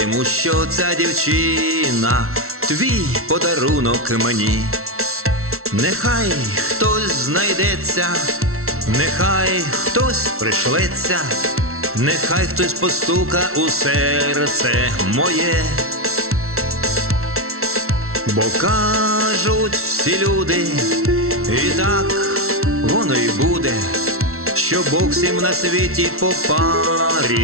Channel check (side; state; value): left; late; 0.63 ms